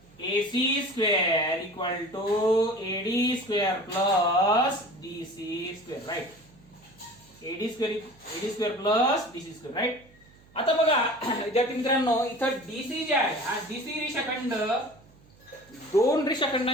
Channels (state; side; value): noise; right; hum, 27 dB below the sound